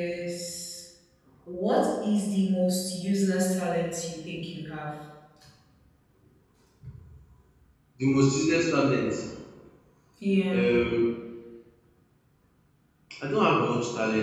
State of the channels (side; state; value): both; identical; correlation 1.00